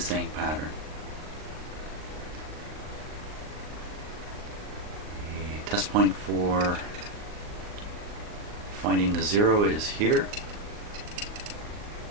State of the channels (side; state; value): left; late; 39 ms